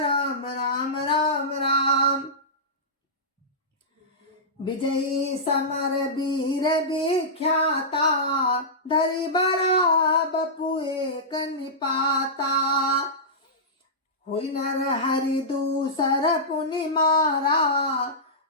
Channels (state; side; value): normal; both; correlation -0.15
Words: राम राम राम। विजयी समर वीर विख्याता, धरि बड़ा बपु एक निपाता। हुई नर हरि दूसर पुनि मारा,